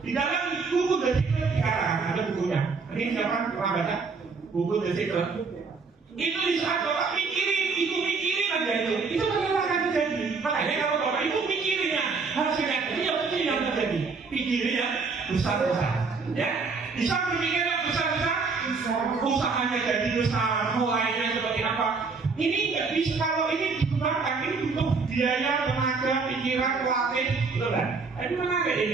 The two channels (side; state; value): left; quieter; 4.6 dB